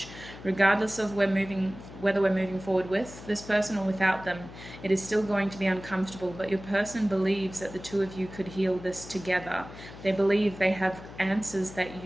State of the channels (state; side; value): noise; left; hum, 15 dB below the sound